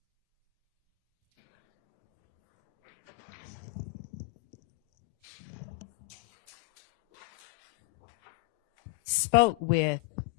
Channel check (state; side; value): quieter; right; 23.6 dB